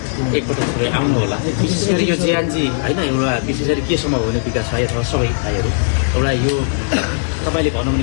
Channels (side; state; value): right; silent; digital silence